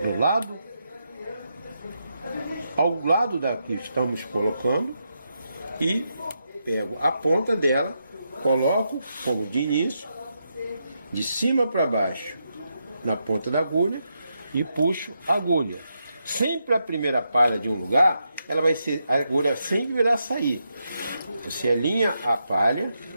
do lado, ao lado da que estamos colocando, e pego a ponta dela, coloco como de início, de cima para baixo, na ponta da agulha, e puxo a agulha. Sempre a primeira palha de um lugar, ela vai ser, a agulha sempre irá sair. Você alinha a palha,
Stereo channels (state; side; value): inverted; both; correlation -0.83